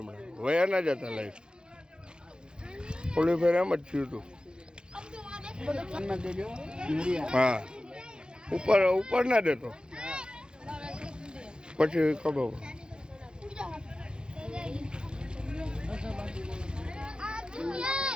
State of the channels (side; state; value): left; late; 0.049 ms